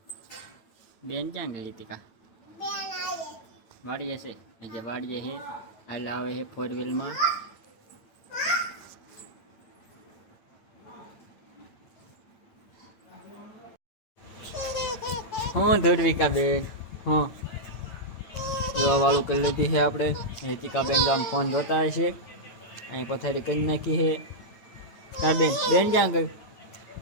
બેન ક્યાં ગઈ? ટીકા વાડીએ છે. જે વાડીએ છે હાલ આવે છે 4 વ્હીલમાં. હું ધુરવિકાબેન હા જોવા વાળું કરી લીધી છે આપણે. ટીકાબેન તો આમ ફોન જોતા હશે. અહીં પથારી કરી નાખી છે. તાર બેન ક્યાં ગઈ?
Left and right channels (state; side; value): late; right; 9.0 ms